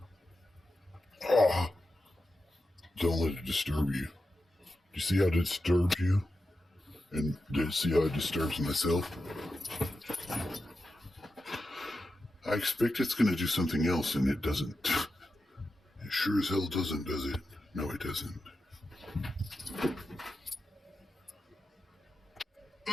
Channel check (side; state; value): both; normal; correlation 0.90